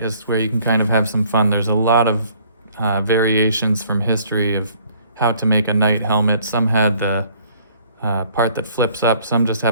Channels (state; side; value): inverted; both; correlation -0.59